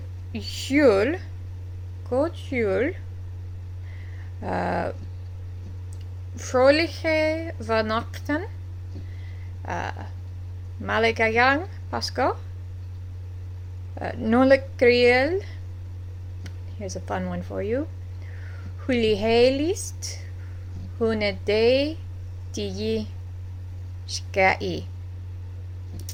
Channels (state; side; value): identical; both; correlation 1.00